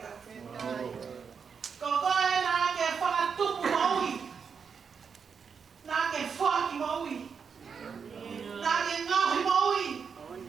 Kokoe nā ke whakatupu maui, nā ke whaki maui, nā ke ngauhi maui,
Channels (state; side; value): quieter; left; 6.2 dB